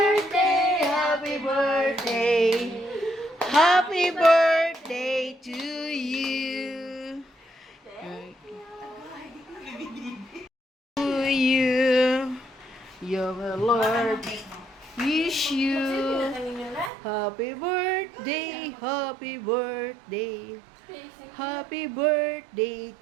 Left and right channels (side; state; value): left; drops out; at 16.9 s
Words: happy birthday. Happy birthday to you. To you. Your Lord wish you happy birthday, happy birthday. Happy birthday